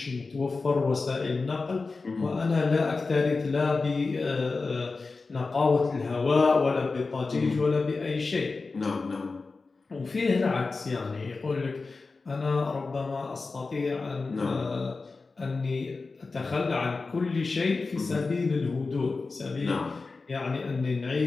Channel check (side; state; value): right; quieter; 4.0 dB